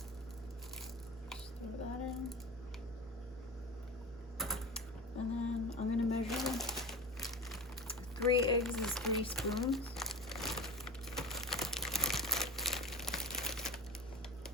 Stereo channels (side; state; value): both; normal; correlation 0.31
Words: Just throw that in. And then I'm gonna measure 3 eggs is 3 spoons.